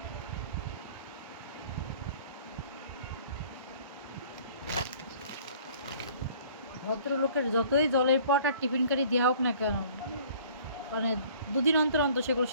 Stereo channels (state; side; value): inverted; both; correlation -0.53